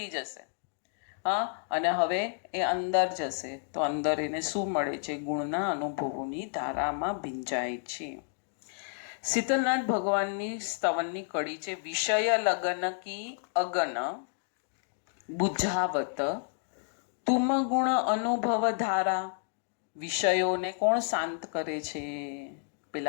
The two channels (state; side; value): silent; right; digital silence